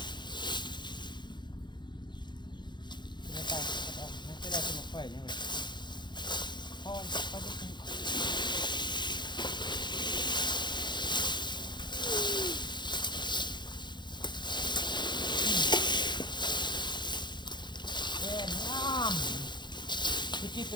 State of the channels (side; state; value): right; late; 0.22 ms